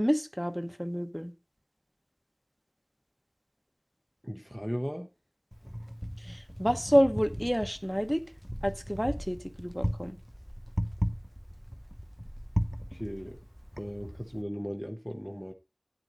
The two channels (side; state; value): both; identical; correlation 1.00